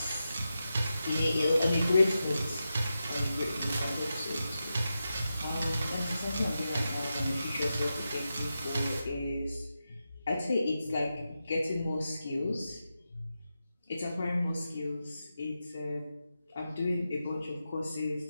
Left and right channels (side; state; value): both; inverted; correlation -0.89